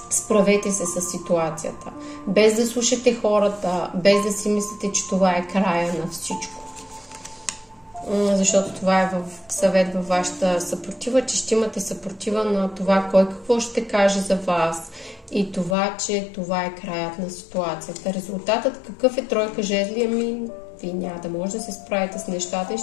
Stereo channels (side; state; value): right; drops out; at 15.8 s